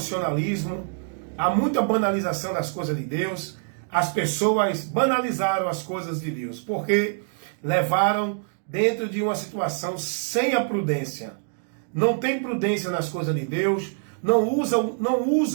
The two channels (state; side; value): silent; left; 62 dB below the other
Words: há muita banalização das coisas de Deus. As pessoas banalizaram as coisas de Deus, porque levaram dentro de uma situação sem a prudência. Não tem prudência nas coisas de Deus, não